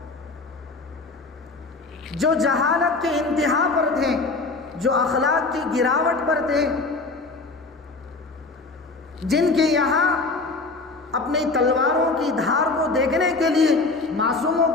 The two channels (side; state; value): right; quieter; 3.7 dB